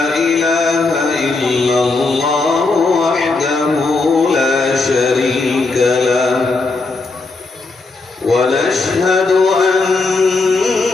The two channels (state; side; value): quieter; right; 3.6 dB